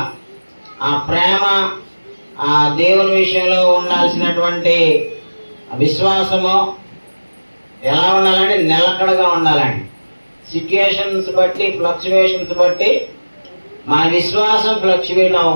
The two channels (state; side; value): inverted; both; correlation -1.00